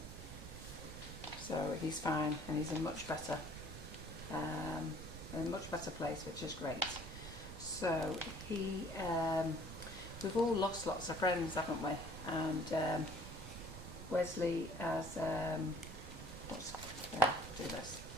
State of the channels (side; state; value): right; noise; rumble, 11 dB below the sound